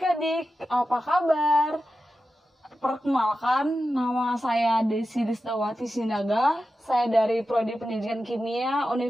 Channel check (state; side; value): normal; both; correlation 0.92